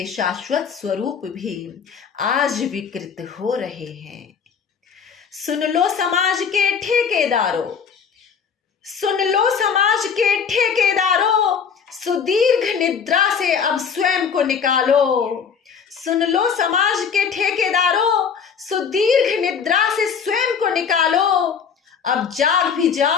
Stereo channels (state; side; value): quieter; right; 6.7 dB